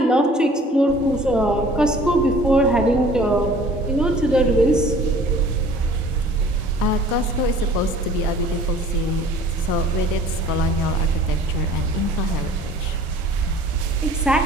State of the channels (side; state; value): both; normal; correlation 0.50